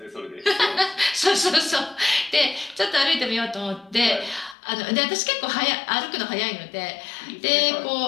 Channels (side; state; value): right; drops out; at 4.5 s